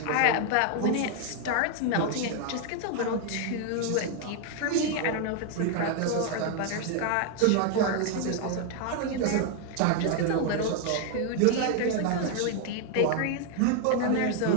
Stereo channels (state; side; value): different; both; correlation 0.00